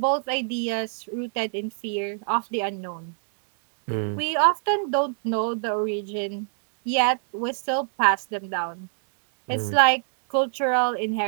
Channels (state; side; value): silent; left; digital silence